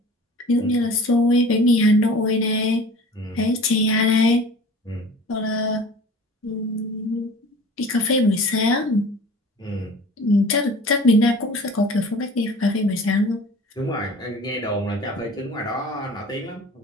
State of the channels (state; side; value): normal; both; correlation 0.42